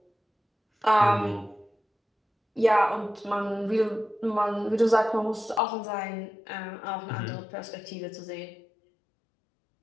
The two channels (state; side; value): drops out; right; at 5.6 s